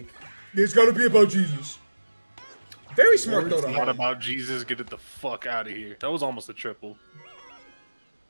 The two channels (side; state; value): both; inverted; correlation -1.00